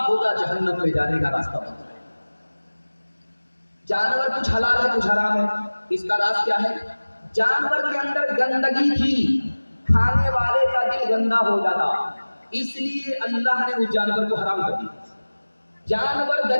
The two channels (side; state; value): both; inverted; correlation -1.00